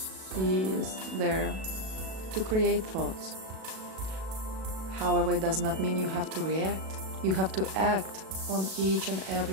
is there to create thoughts. However, it does not mean you have to react. You have to act on each and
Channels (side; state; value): left; late; 37 ms